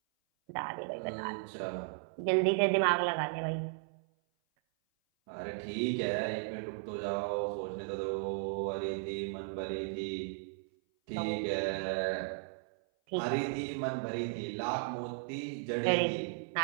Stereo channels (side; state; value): left; silent; 54 dB below the other